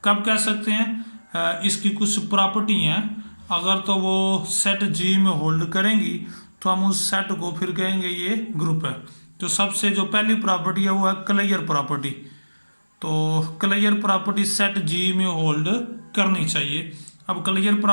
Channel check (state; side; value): inverted; both; correlation -1.00